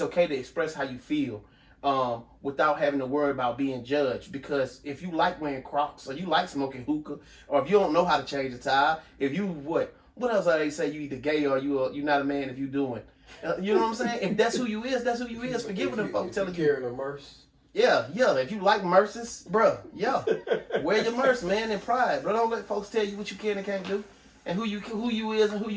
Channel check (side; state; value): both; identical; correlation 1.00